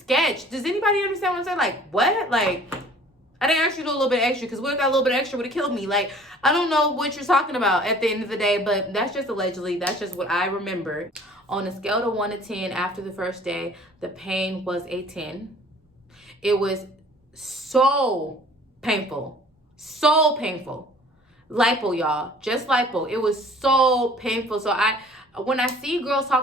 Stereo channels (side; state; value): both; normal; correlation 0.51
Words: Does anybody understand what I'm saying? Like, what? Like, I didn't ask you to do a little bit extra, because what if that little bit extra would have killed me? Like, I don't know what you're talking about at the end of the day, but that's just allegedly. That's just what I remember. On a scale of 1 to 10, after the first day, the pain was a 10. It was so painful. So painful. Lipo, y'all. Just lipo. It was so painful. So when I see girls